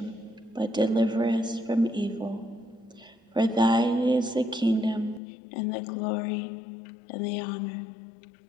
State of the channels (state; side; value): drops out; right; at 5.2 s